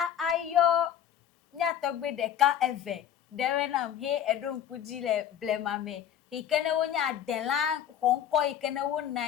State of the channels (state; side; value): quieter; right; 9.8 dB